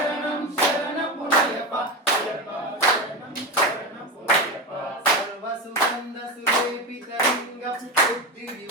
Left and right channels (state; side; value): normal; both; correlation 0.18